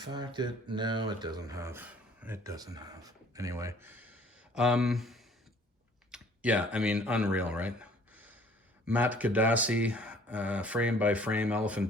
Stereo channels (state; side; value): normal; both; correlation 0.55